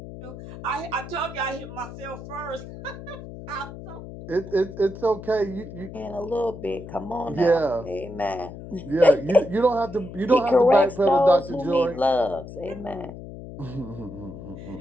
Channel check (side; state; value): left; noise; hum, 12 dB below the sound